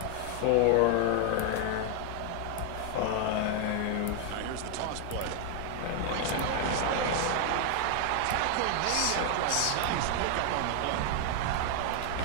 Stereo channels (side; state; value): both; different; correlation 0.00